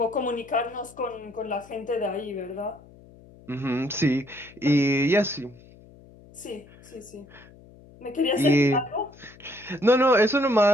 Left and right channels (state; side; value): noise; left; hum, 23 dB below the sound